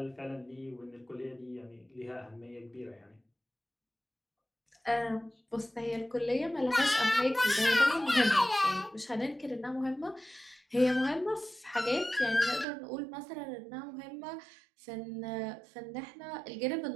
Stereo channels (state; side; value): drops out; left; at 12.7 s